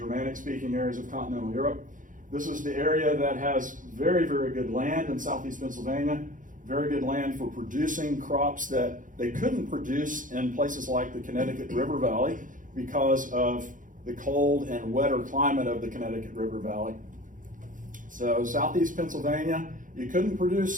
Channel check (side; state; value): left; late; 0.38 ms